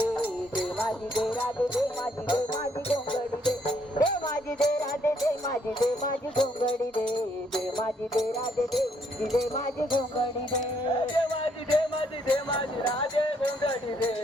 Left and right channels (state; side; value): normal; both; correlation 0.70